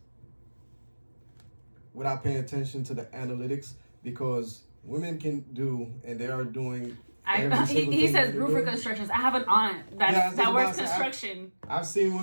without paying attention to the analytics, because women can do, and they are doing. He says roof reconstructions. I have an aunt that works construction. I've seen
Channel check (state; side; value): inverted; both; correlation -1.00